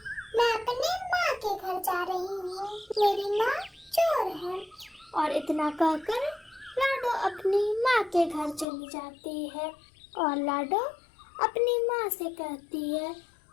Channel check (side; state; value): right; drops out; at 8.7 s